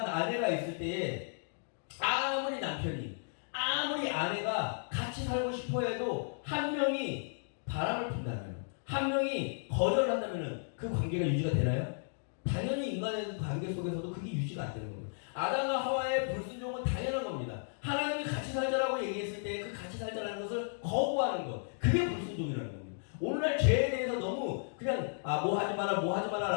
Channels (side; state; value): right; silent; digital silence